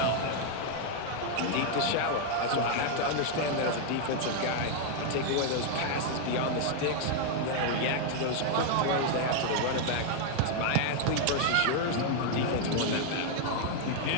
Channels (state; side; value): different; both; correlation 0.00